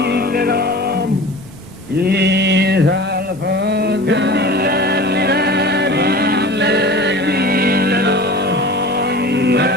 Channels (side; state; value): right; noise; rumble, 23 dB below the sound